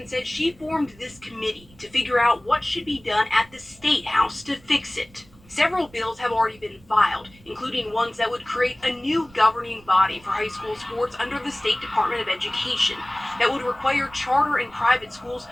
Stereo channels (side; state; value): right; noise; rumble, 26 dB below the sound